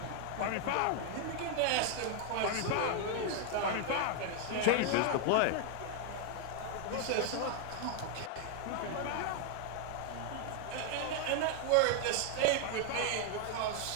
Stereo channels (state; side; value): different; both; correlation 0.00